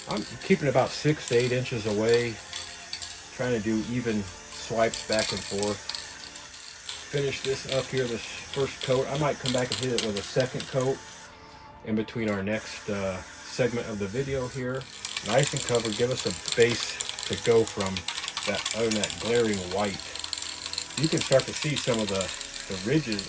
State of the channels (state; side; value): identical; both; correlation 1.00